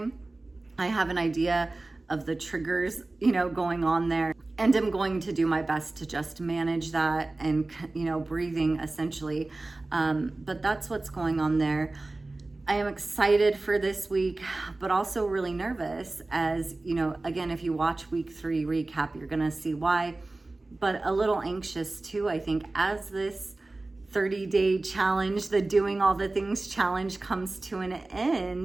I have an idea of the triggers, going on there. And I'm going to do my best to just manage that and, breathing essentially. But that's what's going on there. I am excited for this week, but also really nervous as, again, if you watch week 3 recap, you're going to see why, but a little anxious too, I think, as this 30-day challenge, the doing all the things challenge comes to an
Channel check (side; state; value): left; quieter; 3.1 dB